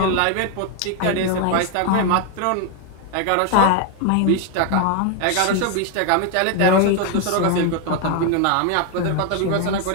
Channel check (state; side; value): different; both; correlation 0.01